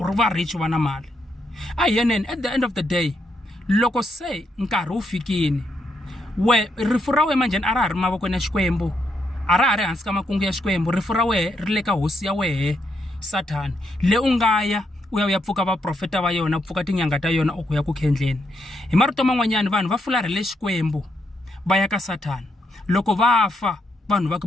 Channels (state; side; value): normal; both; correlation 0.79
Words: ri va rich va na mali. A yeneni at the end of the day loko se nkarhi wu fikini rifu ra wena manjhani a ra ha ri mavokweni ya Xikwembu, a ra ha ri hansi ka makungu ya Xikwembu, rifu ra wena ri le ka hosi ya wehe Sathana le u nga ya u ya pfuka va profeta va yona, pfuka tinyanga ta yona u ku ya ku khendleni. Hi marito man'wanyana vanhu va fularhele Xikwembu va ya ka Sathana. Loko va fa vanhu va ka